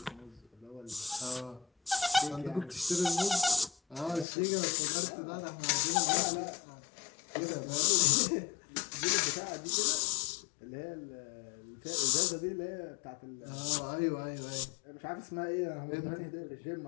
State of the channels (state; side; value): drops out; right; at 4.2 s